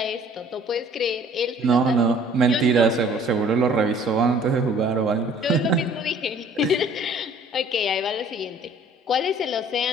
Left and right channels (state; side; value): normal; both; correlation 0.54